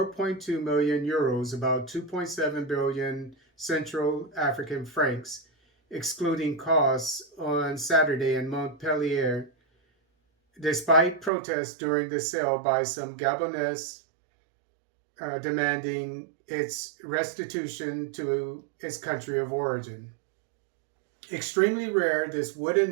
million euros, about 2.7 billion Central African francs, excluding costs, on Saturday in Montpellier, despite protests during the sale by some Gabonese demanding its restitution to its country of origin. Extremely rare, this wooden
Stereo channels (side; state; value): left; drops out; at 11.3 s